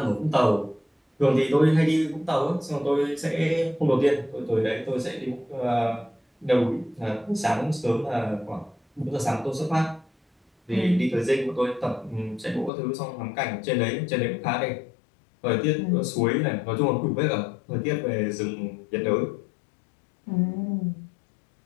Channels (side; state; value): right; drops out; at 12.7 s